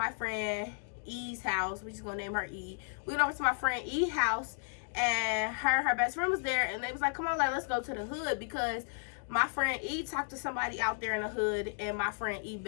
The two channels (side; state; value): right; silent; 55 dB below the other